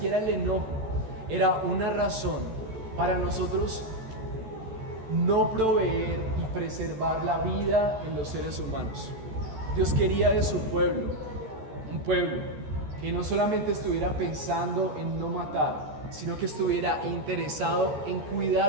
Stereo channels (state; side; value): late; left; 14 ms